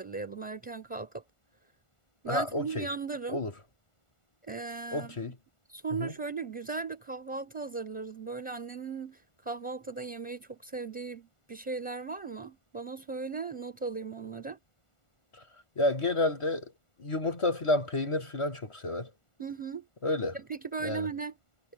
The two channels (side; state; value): right; late; 1.4 ms